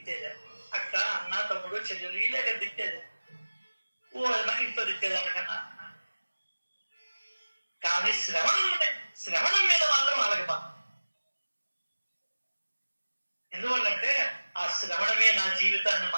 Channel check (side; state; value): both; inverted; correlation -1.00